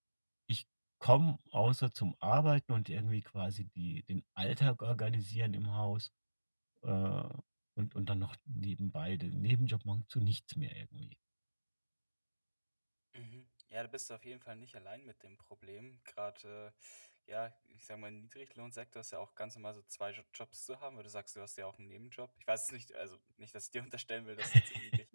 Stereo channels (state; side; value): inverted; both; correlation -1.00